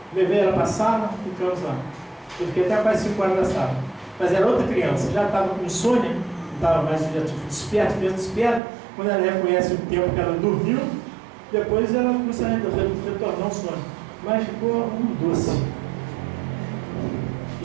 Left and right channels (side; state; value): left; drops out; at 8.6 s